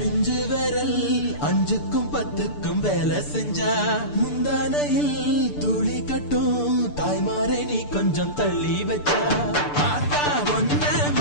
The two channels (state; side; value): late; right; 6.8 ms